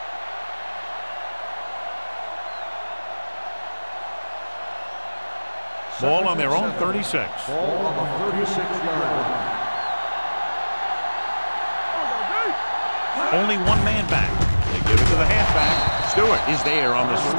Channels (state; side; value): inverted; both; correlation -1.00